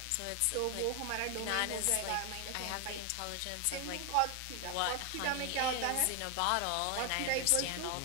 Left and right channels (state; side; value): different; both; correlation 0.01